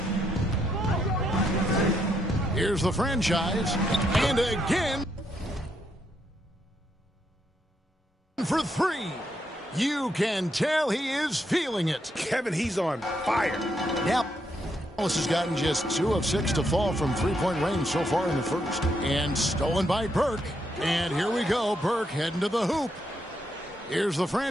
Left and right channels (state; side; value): normal; both; correlation 0.78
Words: Here's the franchise. And again for 3. You can tell he is feeling it. Kevin, he's on fire. Yep. Dallas has gotten just 2 of 6 to fall from three-point range so far in the first. And stolen by Burke. And here we go. Burke heading to the hoop. Here's the